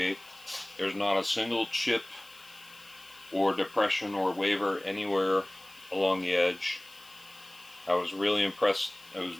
There's not a single chip or depression or waver anywhere along the edge. I was really impressed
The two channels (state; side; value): noise; left; hiss, 23 dB below the sound